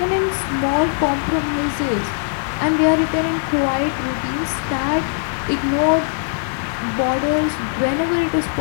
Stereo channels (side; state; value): right; silent; digital silence